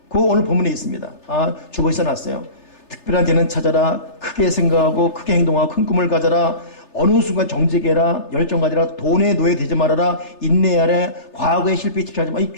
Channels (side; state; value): right; late; 3.3 ms